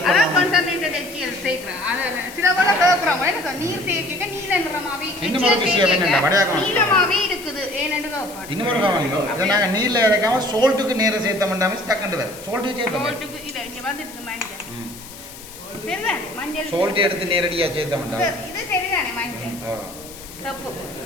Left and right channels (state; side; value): noise; left; hiss, 16 dB below the sound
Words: சேர்க்கிறேன். அத சில பேர் கேட்கறாங்க என்ன நீர் சேர்க்க நீல நிறமாவே நீலமாவே இருக்குது ஏன்னு கேட்பாங்க. இன்னொரு கவனியோ இத நாங்க நீல இறக்காம சால்ட்டுக்கு நேரா சேர்த்தோம்னாமே ஸ்டக்கண்ட் வரும். சால்ட்டுக்கு இத இங்க வந்துருக்கு மஞ்சள். சரிதானே மஞ்சள் சால்ட் எடுத்து நேரடியா சேர்த்தோம்னா இது சரிதானே மஞ்சள். சப்பு